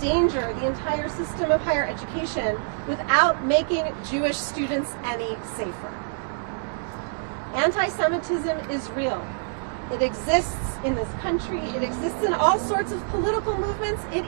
the entire system of higher education without making Jewish students any safer. Anti-Semitism is real. It exists in this country. It exists in all sorts of political movements. It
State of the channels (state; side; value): silent; left; digital silence